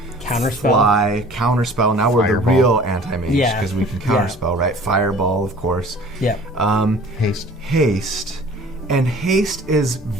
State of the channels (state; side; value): normal; both; correlation 0.47